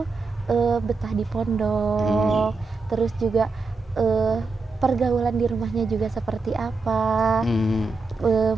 betah di pondok, terus juga pergaulan di rumahnya juga seperti apa?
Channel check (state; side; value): quieter; left; 4.0 dB